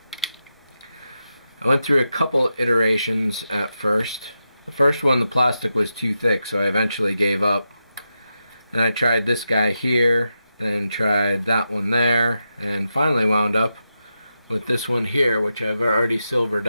I went through a couple iterations at first. The first one, the plastic was too thick, so I eventually gave up. And I tried this guy here, then tried that one there, and finally wound up with this one here, which I've already silvered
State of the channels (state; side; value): inverted; both; correlation -0.88